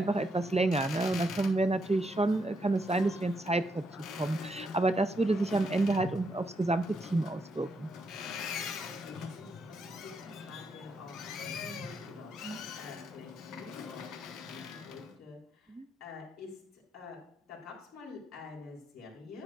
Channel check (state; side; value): normal; both; correlation 0.78